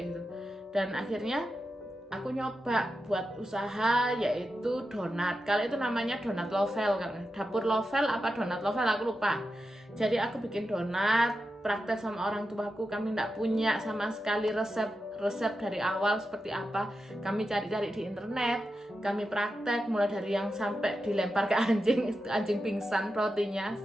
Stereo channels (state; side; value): normal; both; correlation 0.90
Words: gitu. Dan akhirnya aku nyoba buat usaha, yaitu donat. Kalau itu namanya donat lovel kan, dapur lovel apa donat lovel aku lupa. Jadi aku bikin donat, praktek sama orang tuaku. Kami nggak punya sama sekali resep dari awal seperti apa. Kami cari-cari di internet, kami praktek mulai dari yang sampai dilempar ke anjing pingsan rotinya,